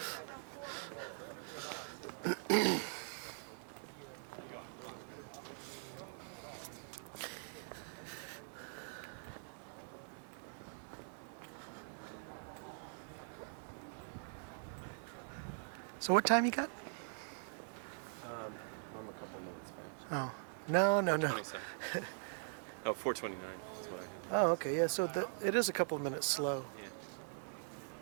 So what time you got? I'm a couple minutes back. Oh, no. 27. Oh, 4:29 is what I have. Oh, okay, yeah, so it is a couple of minutes slow. Yeah.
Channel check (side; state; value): left; silent; digital silence